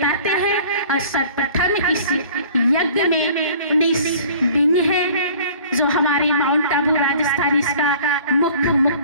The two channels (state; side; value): inverted; both; correlation -0.49